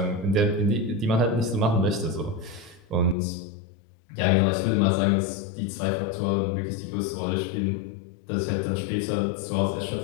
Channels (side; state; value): right; drops out; at 3.2 s